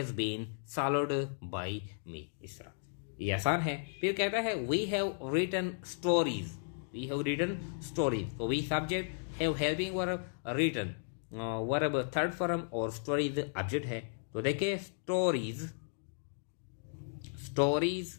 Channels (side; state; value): right; silent; digital silence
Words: been solved by me, इस तरह ये आसान है। फिर कहता है we have written stories, we have written stories, तो we subject, have helping verb, written verb third form और स्टोरीज ऑब्जेक्ट है। तो देखिए स्टोरीज, स्टोरीज